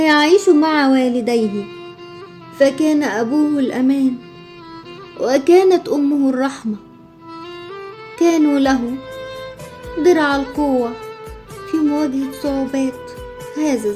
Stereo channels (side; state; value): both; identical; correlation 1.00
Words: مع والديه، فكان أبوه الأمان وكانت أمه الرحمة. كانوا له درع القوة في مواجهة صعوبات هذا